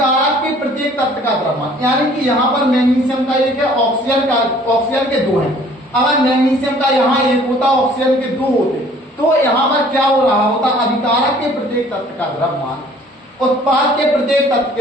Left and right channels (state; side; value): normal; both; correlation 0.54